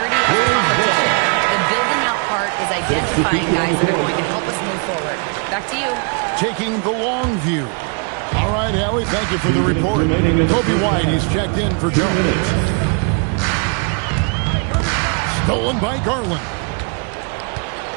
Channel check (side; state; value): left; quieter; 37.3 dB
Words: of the competition. The building out part is identifying guys that are going to help us move forward. Back to you. Taking the long view. All right, Allie, thank you for the report. Kobe White, he's checked in for Jones. Stolen by Garland.